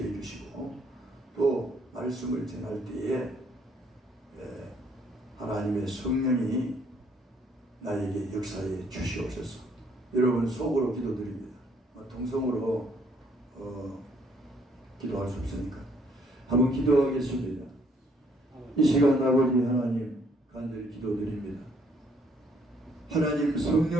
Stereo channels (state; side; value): normal; both; correlation 0.66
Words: 주시고 또 말씀을 전할 때에 하나님의 성령이 나에게 역사해 주시옵소서. 여러분 속으로 기도드립니다. 통성으로 기도할 수 없으니까 한번 기도하겠습니다. 이 시간 아버지 하나님 간절히 기도드립니다. 하나님